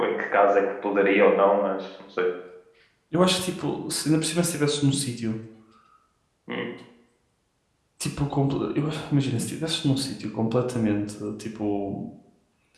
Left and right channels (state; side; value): identical; both; correlation 1.00